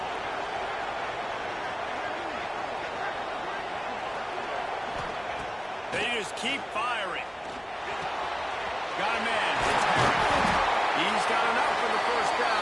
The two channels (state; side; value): identical; both; correlation 1.00